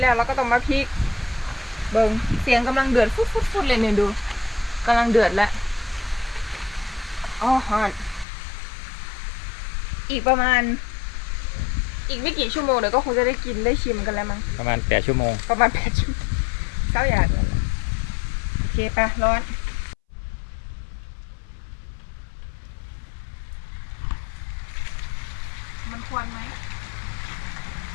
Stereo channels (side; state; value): right; drops out; at 8.2 s